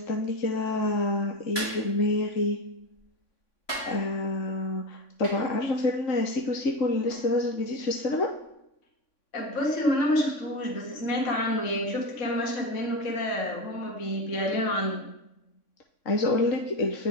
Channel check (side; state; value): right; late; 3.6 ms